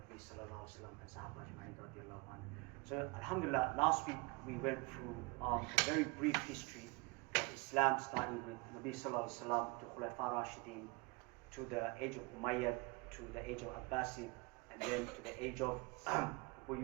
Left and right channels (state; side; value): quieter; left; 26.9 dB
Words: sallallahu alaihi wasallam and Sahaba Ajma'in radiyallahu anhu. So Alhamdulillah, last week we went through a very brief history of Islam, starting with Nabi sallallahu alaihi wasallam to Khulafa Rashidin, to the age of Umayyad, to the age of Abbasid, and then to the age of